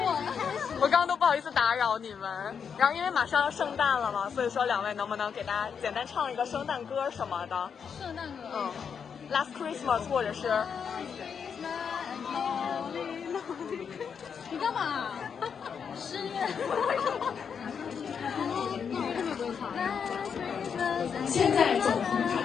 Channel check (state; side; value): quieter; right; 6.8 dB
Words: 了。我刚刚都不好意思打扰你们。然后因为马上要圣诞了嘛，所以说两位能不能给大家简单唱一个圣诞歌什么的？圣诞歌。Last Christmas 或者是。你干嘛？10月。现在走红